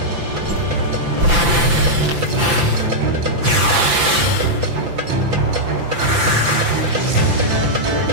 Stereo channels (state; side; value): late; left; 5.9 ms